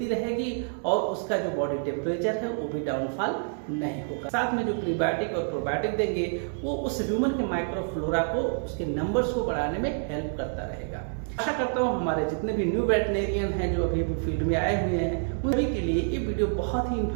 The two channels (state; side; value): silent; left; 60 dB below the other